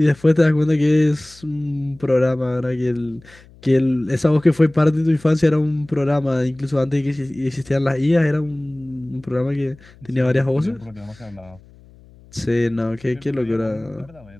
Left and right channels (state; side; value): noise; left; hum, 25 dB below the sound